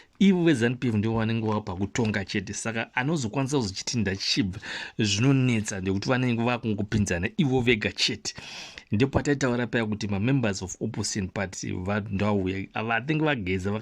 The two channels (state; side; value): identical; both; correlation 1.00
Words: ivo veZANU-PF ndio vanenge vapa kutonga chete, saka anozokwanisa kuzochiti ndachibva zvinonetsa ndekuti vanenge vakungopinzana ivo vega chete. Ndipo pataitaura paya kuti mamembers of opposition party vandauya vatinge vageza